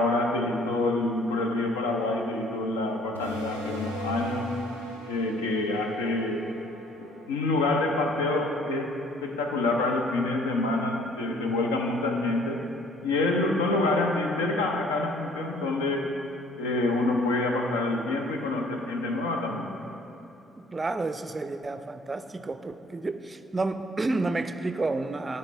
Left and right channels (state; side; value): normal; both; correlation 0.57